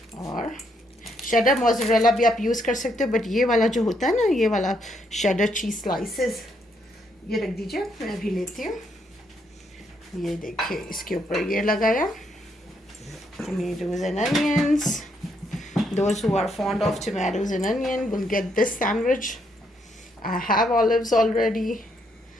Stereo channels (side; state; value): both; normal; correlation 0.74